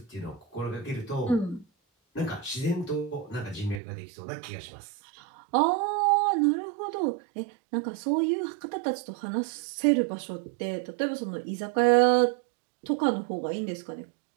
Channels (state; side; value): drops out; left; at 3.8 s